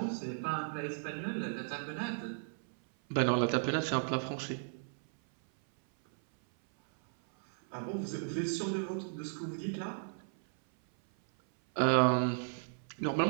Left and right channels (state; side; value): silent; left; 55 dB below the other